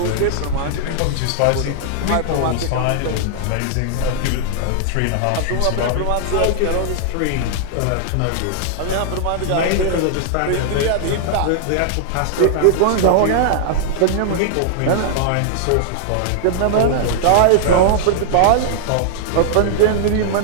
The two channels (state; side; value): different; both; correlation -0.01